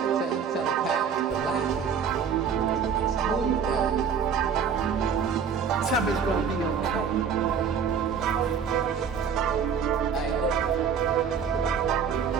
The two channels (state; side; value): quieter; left; 6.8 dB